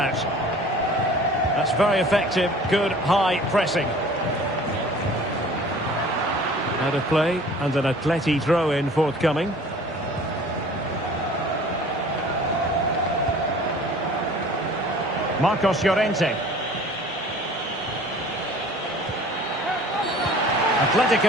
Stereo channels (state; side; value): normal; both; correlation 0.47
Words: That's very effective, good high pressing. Out of play, and an Atleti throw-in forthcoming. Marcos Llorente.